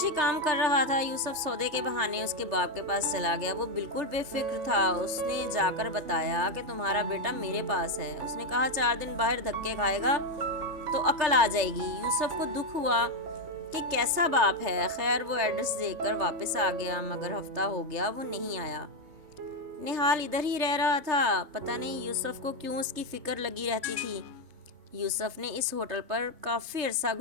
کام کر رہا تھا۔ یوسف سودے کے بہانے اس کے باپ کے پاس چلا گیا۔ وہ بالکل بے فکر تھا۔ اس نے جا کر بتایا کہ تمہارا بیٹا میرے پاس ہے۔ اس نے کہا 4 دن باہر دھکے کھائے گا تو عقل آ جائے گی۔ یوسف کو دکھ ہوا کہ کیسا باپ ہے۔ خیر، وہ ایڈریس دے کر واپس آ گیا، مگر ہفتہ ہو گیا وہ نہیں آیا۔ نہال ادھر ہی رہ رہا تھا، پتہ نہیں یوسف کو کیوں اس کی فکر لگی رہتی تھی۔ یوسف نے اس ہوٹل پر کافی عرصہ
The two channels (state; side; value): late; left; 3.5 ms